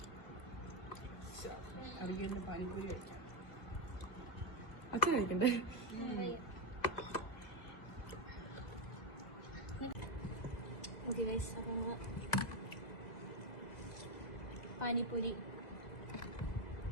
അച്ഛൻ കഴിക്കണ്ടേ? ഓക്കെ ഗൈസ്, അപ്പം നമ്മള് പാനിപ്പൂരി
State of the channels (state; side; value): late; right; 2.0 ms